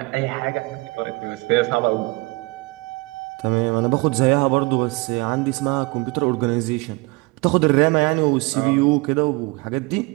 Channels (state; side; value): quieter; left; 26.0 dB